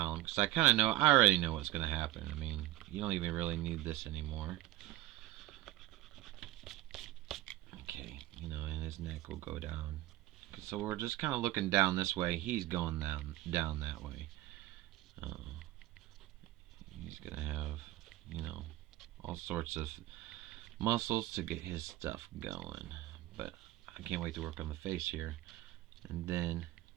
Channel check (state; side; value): quieter; left; 16.3 dB